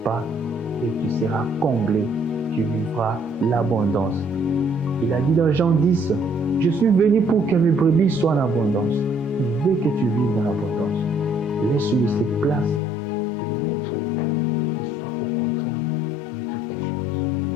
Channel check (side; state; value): right; drops out; at 12.8 s